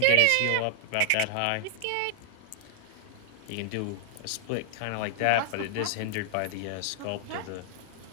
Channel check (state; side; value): different; both; correlation 0.00